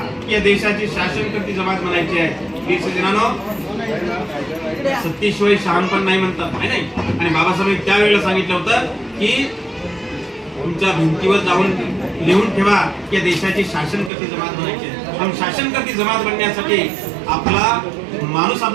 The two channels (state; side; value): drops out; left; at 14.1 s